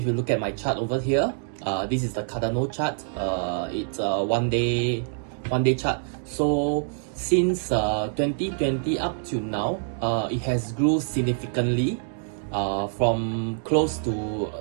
you look at my chart over here, this is the Cardano chart. It's a one day chart. So since 2020 up to now, it has grew significantly from close to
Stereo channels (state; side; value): silent; left; digital silence